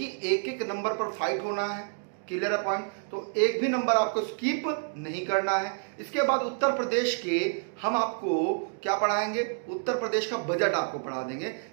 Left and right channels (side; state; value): left; silent; digital silence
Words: एक एक नंबर पर फाइट होना है, क्लियर है पॉइंट। तो एक भी नंबर आपको स्किप नहीं करना है। इसके बाद उत्तर प्रदेश के हम आपको क्या पढ़ाएंगे, उत्तर प्रदेश का बजट आपको पढ़ा देंगे,